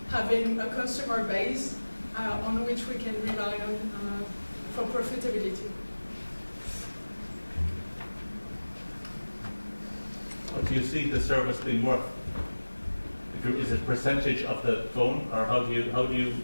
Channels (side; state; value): both; inverted; correlation -1.00